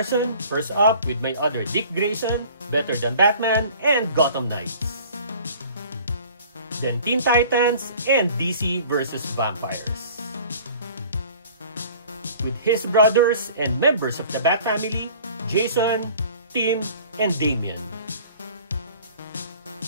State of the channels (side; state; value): both; inverted; correlation -0.47